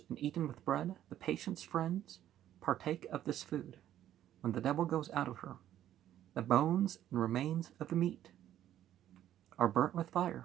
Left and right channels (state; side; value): quieter; left; 11.8 dB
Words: and eaten with bread, the patient's friends partake of this food. When the devil goes out of her, the bones and remains of the meat are burnt with